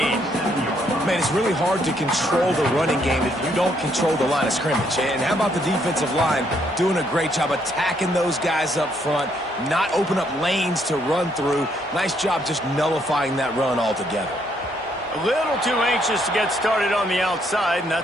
Man, it's really hard to control the running game if you don't control the line of scrimmage. And how about the defensive line doing a great job attacking those guys up front, not open up lanes to run through. Nice job just nullifying that run altogether. A little too anxious to get started on the outside, and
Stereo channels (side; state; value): both; normal; correlation 0.71